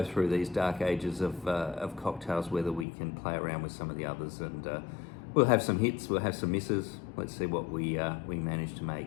through these dark ages of cocktails, whether we can play around with some of the others, and we'll have some hits, we'll have some misses. Let's see what we manage to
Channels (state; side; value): drops out; right; at 2.9 s